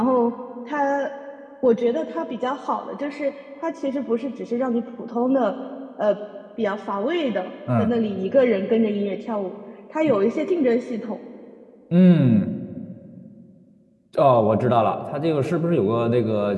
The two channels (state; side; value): identical; both; correlation 1.00